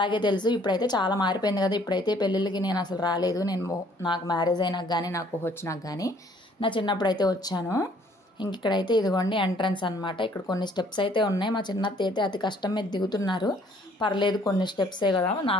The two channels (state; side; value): normal; both; correlation 0.60